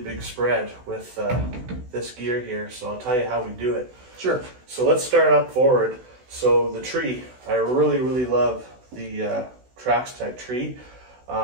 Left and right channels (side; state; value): left; late; 16 ms